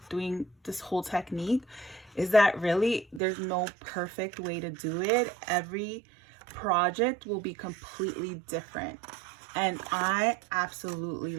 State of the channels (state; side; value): drops out; left; at 3.2 s